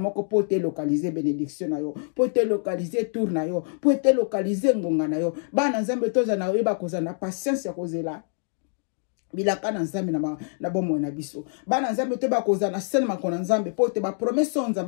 po te localiser bénédiction na yo po te localiser tour na yo po te localiser ngonga na yo bana nzambe toza na yeba kozana patience ya kozela bilaka na nzambe na bomo na biso bana nzambe te ba kozana sene makona nzambe po te ba promesse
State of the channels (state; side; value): silent; right; 60 dB below the other